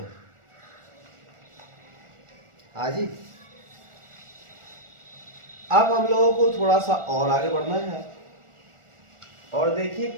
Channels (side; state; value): left; late; 1.4 ms